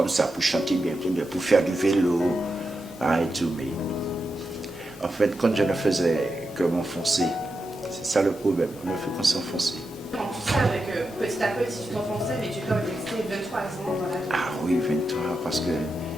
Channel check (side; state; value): both; normal; correlation 0.88